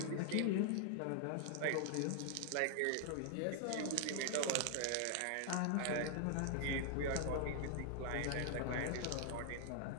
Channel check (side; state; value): both; different; correlation 0.00